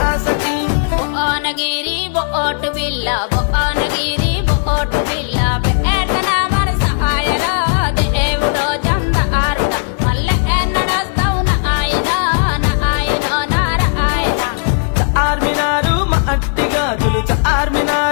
ఆసకి భువనగిరి బోటు బిల్ల భువనగిరి బోటు బిల్ల పేటన మన సహాయరా దేవుడో చందారుడ మళ్ళీ ఎన్నడొస్తావు నాయన నారాయణ చార్మినారు మట్టి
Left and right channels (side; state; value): right; silent; 65 dB below the other